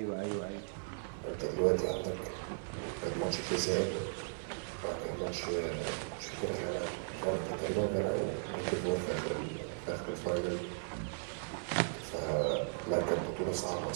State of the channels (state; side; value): silent; left; 53 dB below the other